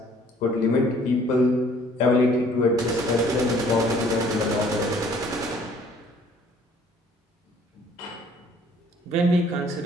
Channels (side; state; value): both; normal; correlation 0.57